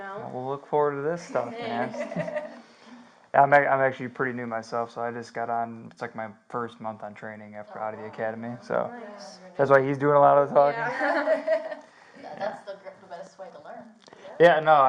We'll look forward to this stuff, man. Thanks. I'm actually pretty new myself, so I just got on. It's like my first month on training after out of the academy, so Nice. that's why he's doing a lot of the talking. Yeah. That's the best way to learn. Yeah, no,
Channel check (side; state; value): both; identical; correlation 1.00